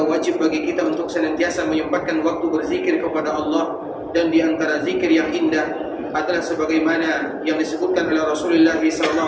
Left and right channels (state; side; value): identical; both; correlation 1.00